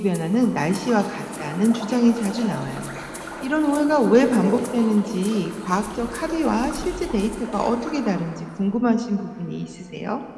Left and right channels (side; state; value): both; identical; correlation 1.00